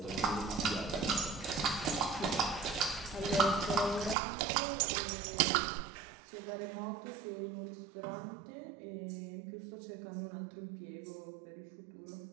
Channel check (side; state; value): left; drops out; at 4.2 s